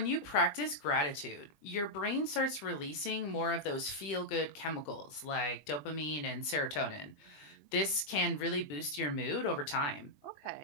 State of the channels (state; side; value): late; right; 20 ms